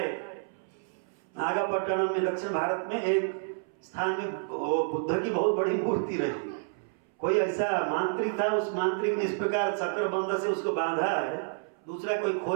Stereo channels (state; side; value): silent; left; 58 dB below the other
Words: नागापट्टनम में दक्षिण भारत में एक स्थान में बुद्ध की बहुत बड़ी मूर्ति रही। कोई ऐसा मांत्रिक था, उस मांत्रिक ने इस प्रकार चक्रबंध से उसको बांधा है, दूसरा कोई